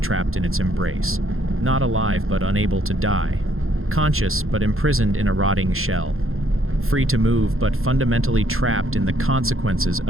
in its embrace. Not alive, but unable to die. Conscious, but imprisoned in a rotting shell. Free to move, but fundamentally trapped in the consequences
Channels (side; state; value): left; late; 0.61 ms